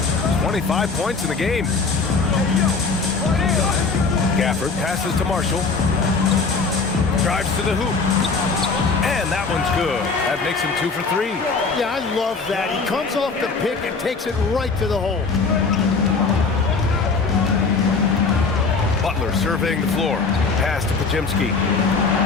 25 points in the game. Gafford passes to Marshall. Drives to the hoop. And that one's good. That makes him 2 for 3. Yeah, I love that. He comes off the pick and takes it right to the hole. Butler surveying the floor. Pass to Pajemski.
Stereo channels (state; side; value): quieter; right; 4.4 dB